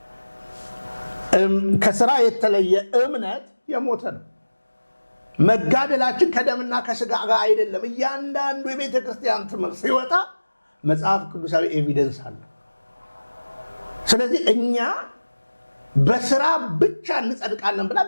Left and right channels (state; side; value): inverted; both; correlation -1.00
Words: ከስራ የተለየ እምነት የሞተ ነው። መጋደላችን ከደምና ከስጋ ጋር አይደለም። እያንዳንዱ የቤተ ክርስቲያን ትምህርት ሲወጣ መጽሐፍ ቅዱሳዊ ኤቪደንስ አለ። ስለዚህ እኛ በስራ ብቻ እንጸድቃለን ብላ